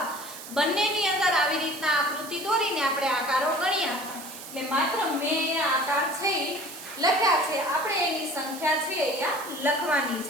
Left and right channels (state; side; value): noise; right; hiss, 13 dB below the sound